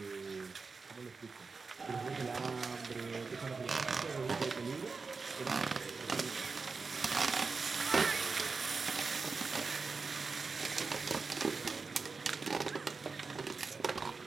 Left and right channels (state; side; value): quieter; left; 4.5 dB